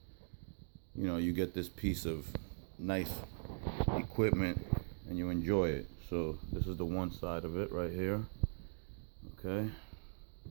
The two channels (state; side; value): silent; left; digital silence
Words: you know, you get this piece of nice equipment and you enjoy it. So this is the one side of it right here. Okay.